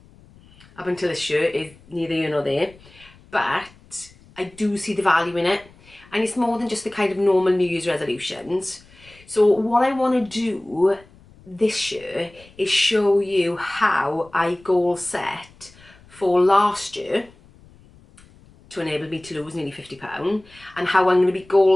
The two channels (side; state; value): left; noise; rumble, 26 dB below the sound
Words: up until this year is neither here nor there, but I do see the value in it, and it's more than just the kind of normal New Year's resolutions. So what I want to do this year is show you how I goal set for last year to enable me to lose nearly £50, and how I'm going to be